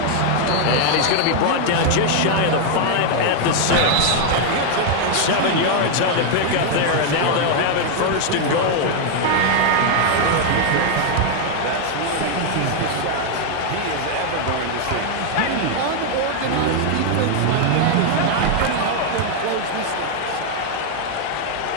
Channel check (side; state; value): both; different; correlation 0.00